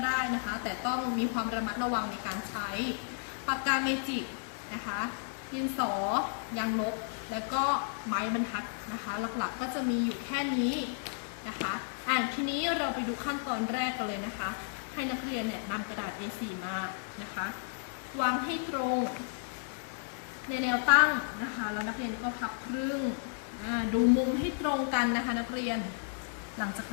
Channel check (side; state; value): right; silent; digital silence